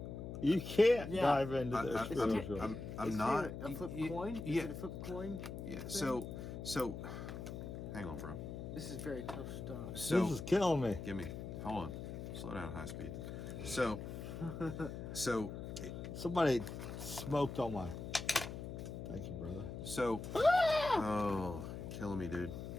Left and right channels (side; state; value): left; noise; hum, 7 dB below the sound